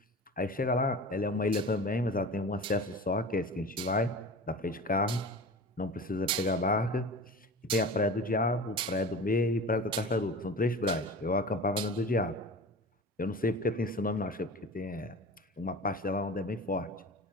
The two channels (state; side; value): normal; both; correlation 0.35